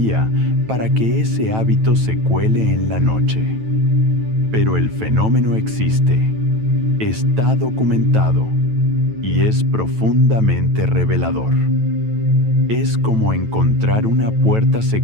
para que ese hábito se cuele en la noche. Pero el fenómeno existe, está documentado y es profundamente revelador. Es como encontrar una puerta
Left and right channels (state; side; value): late; left; 9.1 ms